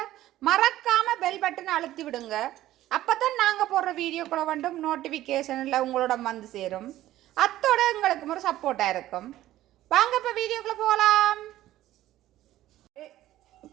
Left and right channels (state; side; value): quieter; left; 14.4 dB